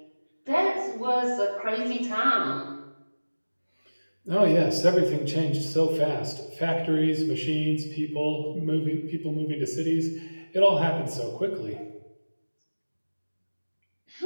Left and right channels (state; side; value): inverted; both; correlation -1.00